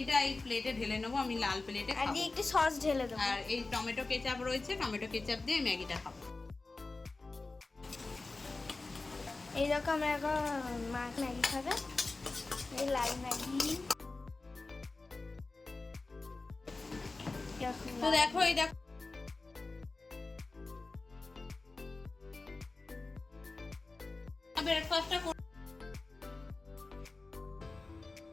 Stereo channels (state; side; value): quieter; right; 3.5 dB